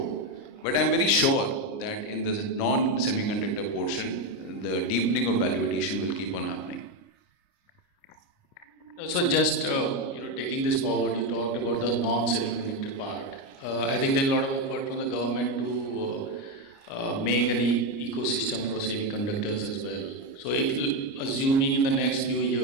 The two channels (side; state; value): right; late; 29 ms